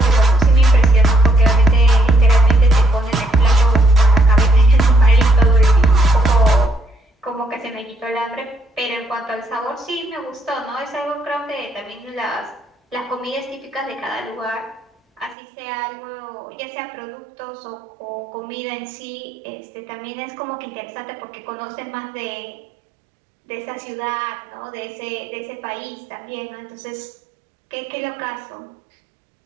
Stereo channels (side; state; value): left; drops out; at 15.4 s